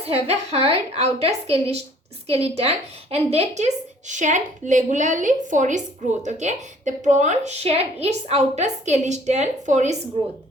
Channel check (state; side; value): normal; both; correlation 0.56